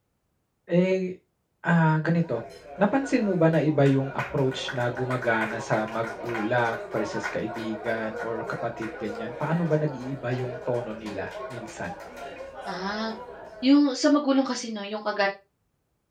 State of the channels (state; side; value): identical; both; correlation 1.00